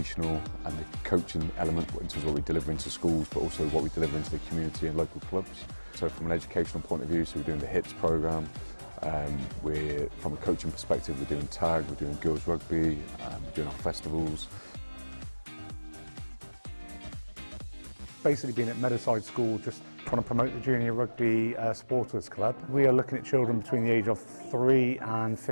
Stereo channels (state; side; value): inverted; both; correlation -1.00